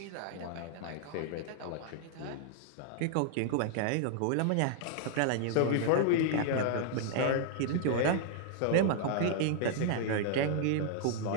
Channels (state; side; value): different; both; correlation -0.01